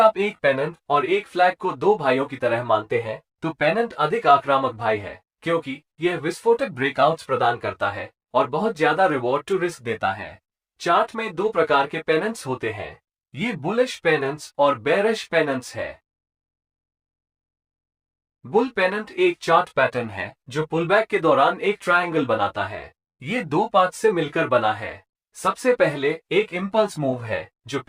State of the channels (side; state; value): both; identical; correlation 1.00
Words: एक पेनेंट और एक फ्लैग को दो भाइयों की तरह मानते हैं तो पेनेंट अधिक आक्रामक भाई है क्योंकि यह विस्फोटक ब्रेकआउट्स प्रदान करता है और बहुत ज्यादा रिवॉर्ड टू रिस्क देता है। चार्ट में दो प्रकार के पेनेंट्स होते हैं, ये बुलिश पेनेंट्स और बेरिश पेनेंट्स है। बुल पेनेंट एक चार्ट पैटर्न है जो पुलबैक के दौरान एक ट्रायंगल बनाता है। ये दो पार्ट से मिलकर बना है। सबसे पहले एक इंपल्स मूव है जो